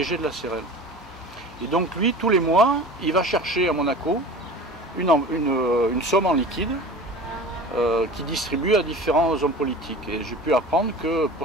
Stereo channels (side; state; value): both; normal; correlation 0.38